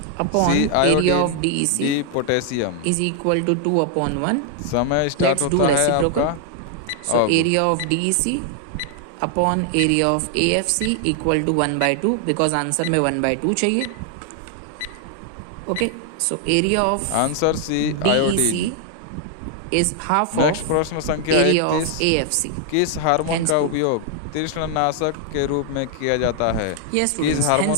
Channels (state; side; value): different; both; correlation 0.00